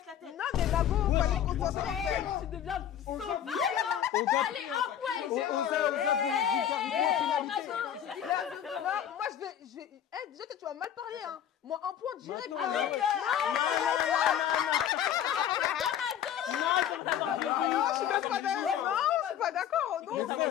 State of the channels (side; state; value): right; quieter; 10.0 dB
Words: la tête. Non, mais Mago, fallait qu'on soit sincère. Tu deviens Oza, Allez, un point. Non, moi je vais... Eh, déjà, tu vas mal parler, hein. Moi, un point direct. Non, hein. Non, je suis même pas d'accord. Non, je suis pas d'accord. Non,